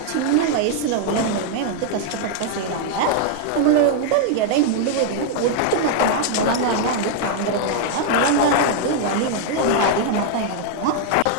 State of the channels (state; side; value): different; both; correlation -0.01